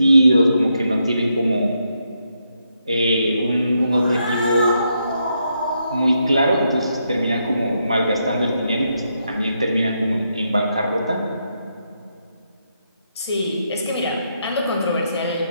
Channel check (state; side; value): inverted; both; correlation -0.80